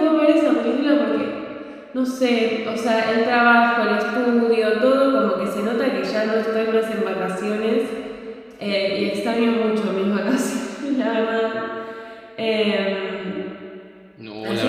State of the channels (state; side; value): identical; both; correlation 1.00